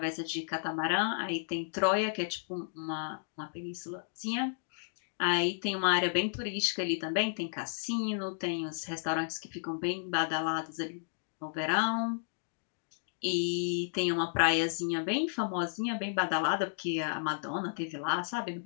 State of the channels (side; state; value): right; silent; digital silence